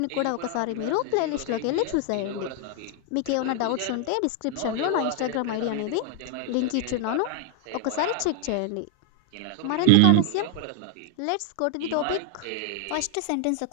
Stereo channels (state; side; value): different; both; correlation 0.00